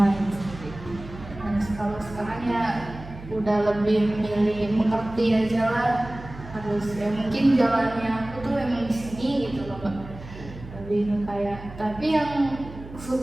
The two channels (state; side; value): noise; right; hum, 15 dB below the sound